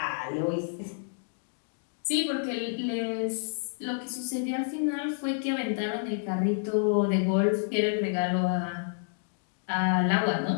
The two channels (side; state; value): right; silent; digital silence